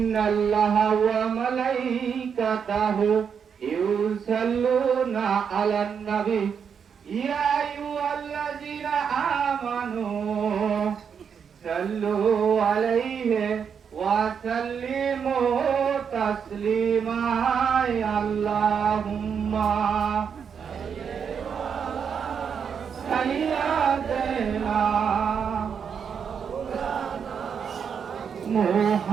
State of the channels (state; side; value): quieter; left; 7.0 dB